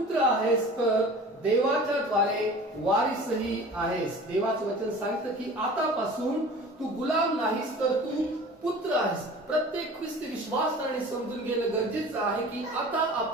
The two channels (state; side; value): normal; both; correlation 0.41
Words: आहेस तर देवाच्या द्वारे वारिसही आहेस. देवाचं वचन सांगतं की आतापासून तू गुलाम नाहीस तर तू पुत्र आहेस. प्रत्येक ख्रिस्ती विश्वासाने समजून घेणं गरजेचं आहे की आता